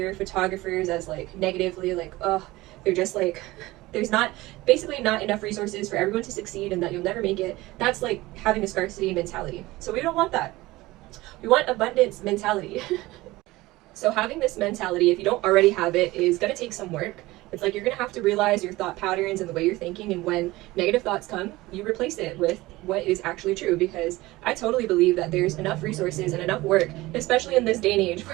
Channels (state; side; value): quieter; left; 19.3 dB